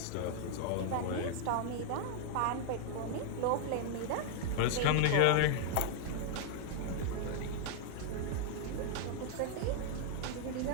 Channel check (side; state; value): both; different; correlation 0.00